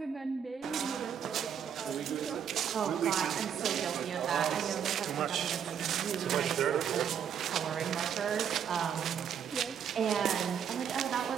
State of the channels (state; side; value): quieter; left; 8.3 dB